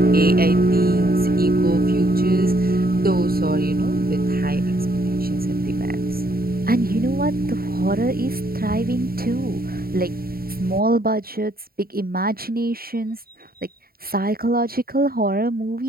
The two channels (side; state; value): left; late; 0.43 ms